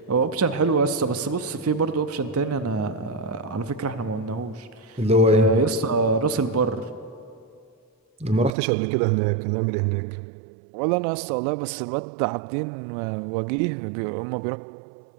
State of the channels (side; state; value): left; drops out; at 8.6 s